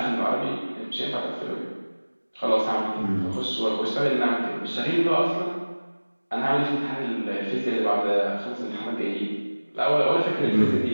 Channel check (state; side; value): inverted; both; correlation -1.00